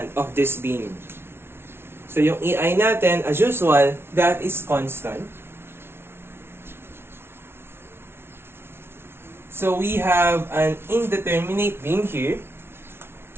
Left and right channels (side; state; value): left; late; 0.12 ms